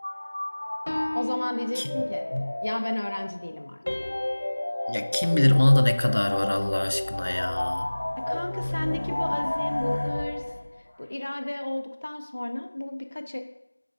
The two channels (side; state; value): both; inverted; correlation -1.00